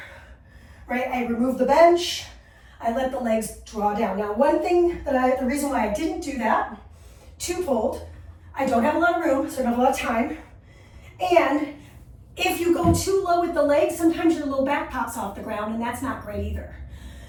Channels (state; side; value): identical; both; correlation 1.00